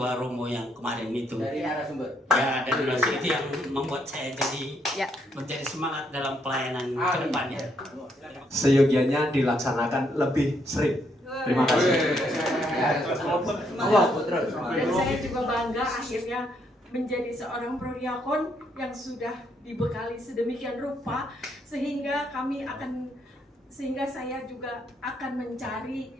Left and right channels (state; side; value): normal; both; correlation 0.73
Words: romo yang kemarin itu. Dari narasumber. Ya, dari narasumber itu yang membuat saya jadi menjadi semangat dalam pelayanan ke depannya. Seyogianya dilaksanakan lebih sering. Terima kasih. Dan saya juga bangga akhirnya menjadi seorang prodiakon yang sudah dibekali sedemikian rupa sehingga saya juga akan